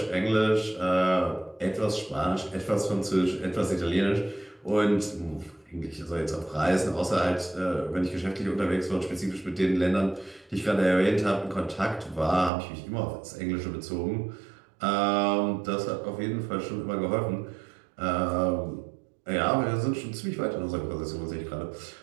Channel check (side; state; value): left; drops out; at 12.5 s